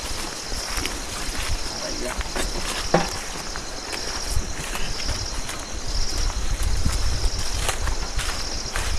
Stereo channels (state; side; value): identical; both; correlation 1.00